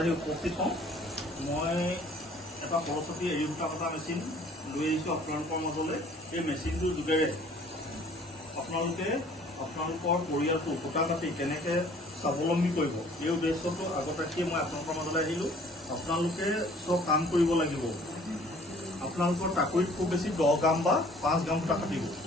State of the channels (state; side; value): normal; both; correlation 0.55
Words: আহি উপস্থিত হওঁ। মই এটা সৰস্বতী এৰী সূতা কটা মেচিন লৈ আহিছোঁ আপোনালোকৰ মাজলৈ। এই মেচিনটোৰ যোগেৰে আপোনালোকে আপোনালোকৰ পৰিয়ালটো সূতা কাটি কেনেকৈ স্বাৱলম্বী কৰিব এই উদ্দেশ্যটো আগত ৰাখিয়ে মই আপোনালোকৰ মাজলৈ আহিলোঁ। আপোনালোকে চব কাম কৰিব লাগিব। আপোনালোকৰ টাকুৰিত খুব বেছি 10 গ্ৰাম বা 5 গ্ৰাম সূতা কাটিব,